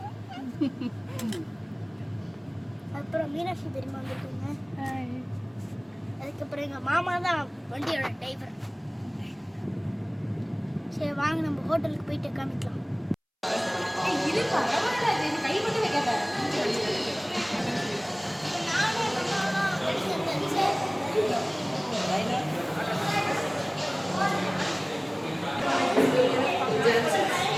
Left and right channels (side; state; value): both; identical; correlation 1.00